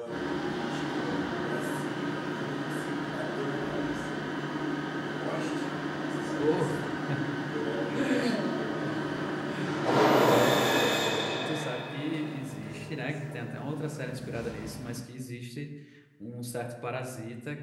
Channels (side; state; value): both; identical; correlation 1.00